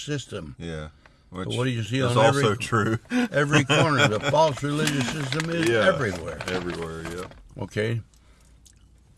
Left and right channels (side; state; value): both; identical; correlation 1.00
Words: Yeah. Which So what do you see is on also true. every corner? The false religious system is everywhere. Everywhere, yeah. Okay?